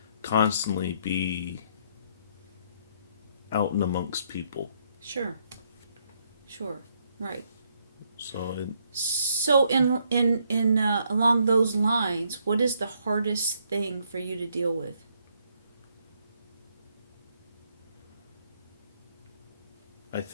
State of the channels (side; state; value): both; inverted; correlation -0.72